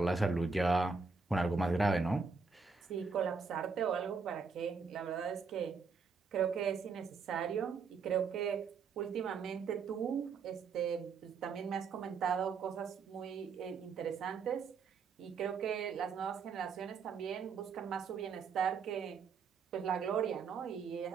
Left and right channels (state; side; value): quieter; left; 5.1 dB